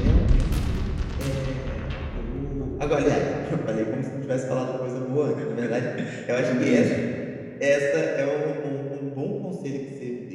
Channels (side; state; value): both; identical; correlation 1.00